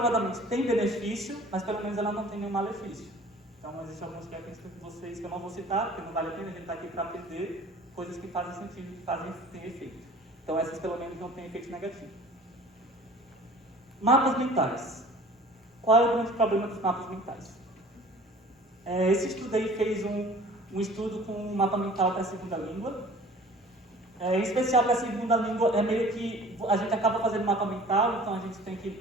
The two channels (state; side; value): normal; both; correlation 0.47